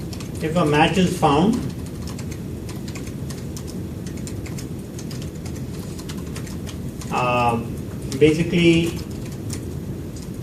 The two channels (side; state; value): both; identical; correlation 1.00